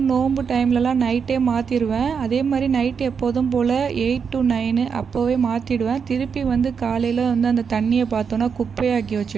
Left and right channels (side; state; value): left; quieter; 6.3 dB